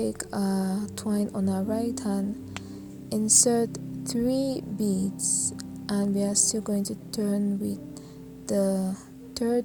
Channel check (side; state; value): both; identical; correlation 1.00